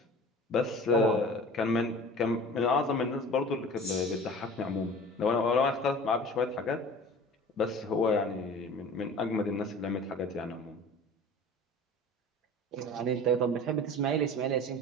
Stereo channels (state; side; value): normal; both; correlation 0.41